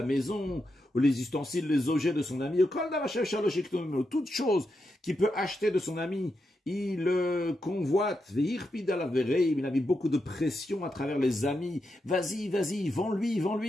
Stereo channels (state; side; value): normal; both; correlation 0.85